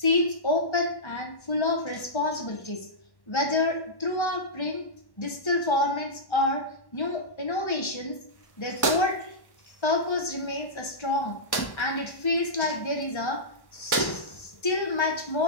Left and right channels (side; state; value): right; late; 1.1 ms